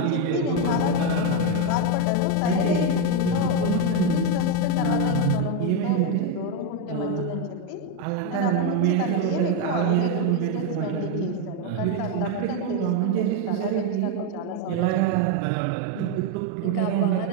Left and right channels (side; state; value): both; different; correlation 0.03